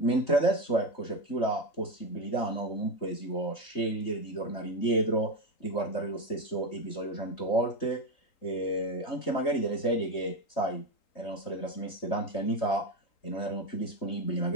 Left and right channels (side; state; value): right; late; 3.8 ms